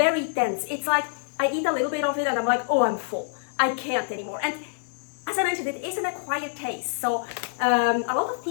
dense. It's like I eat a little bit of it and I'm like, oh, I'm full. I can't anymore. And as I mentioned, it is an acquired taste. So a lot of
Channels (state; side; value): silent; right; digital silence